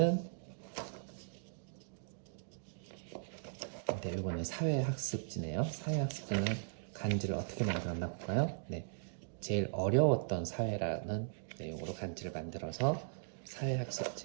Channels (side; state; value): left; silent; digital silence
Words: 네, 이거는 사회학습지네요. 사회학습지는 간지를 어떻게 만들었나 볼까요? 네, 제일 어려웠던 사회라는 내용으로 간지를 만들어서